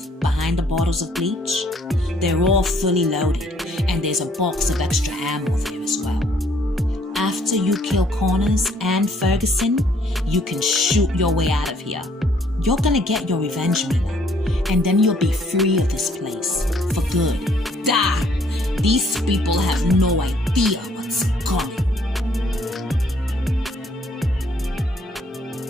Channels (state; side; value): normal; both; correlation 0.64